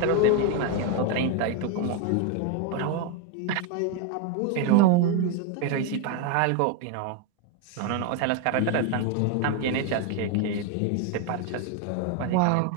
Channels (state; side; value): different; both; correlation 0.01